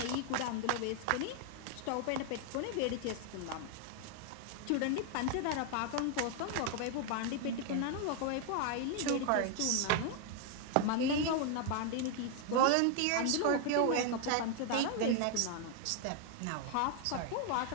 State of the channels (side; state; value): both; different; correlation 0.00